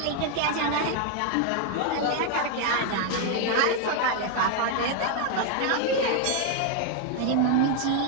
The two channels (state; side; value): different; both; correlation 0.01